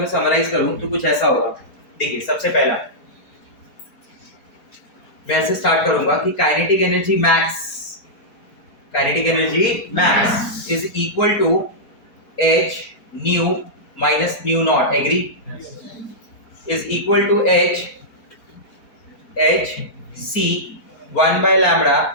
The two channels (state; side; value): late; right; 4.5 ms